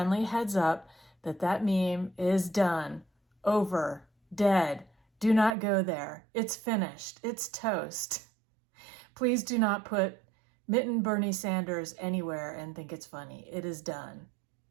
heads up that meme is done, over, dead. Do not go there. It's finished. It's toast. Please do not put Mitten Bernie Sanders anywhere and think it's funny. It is done.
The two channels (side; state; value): left; drops out; at 5.6 s